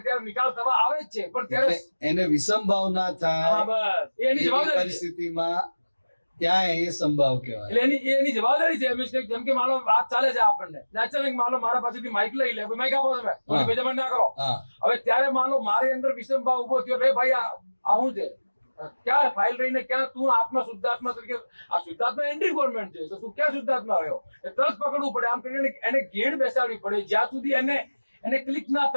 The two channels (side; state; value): both; inverted; correlation -1.00